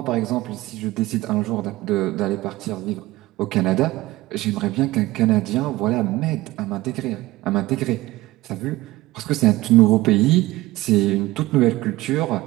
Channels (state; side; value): quieter; left; 18.4 dB